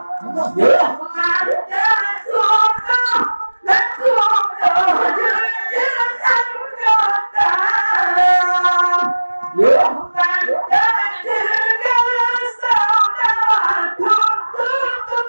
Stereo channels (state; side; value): inverted; both; correlation -1.00